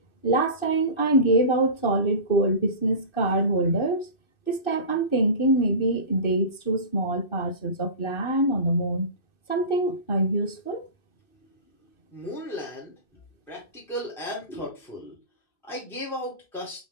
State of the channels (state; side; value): late; right; 2.6 ms